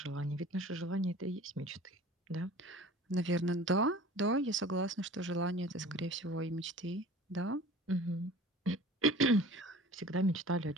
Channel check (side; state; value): both; normal; correlation 0.43